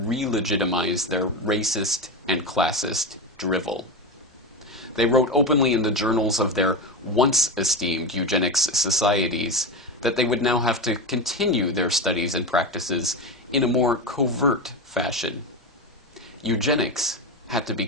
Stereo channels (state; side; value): normal; both; correlation 0.18